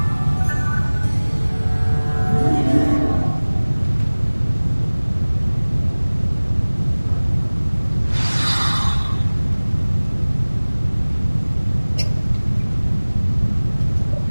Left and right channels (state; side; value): inverted; both; correlation -1.00